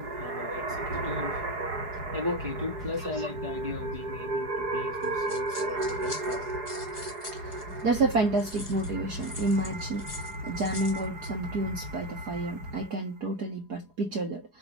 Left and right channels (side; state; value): left; late; 4.8 ms